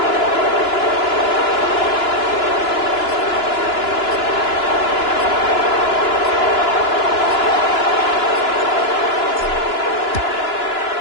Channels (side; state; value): right; late; 2.9 ms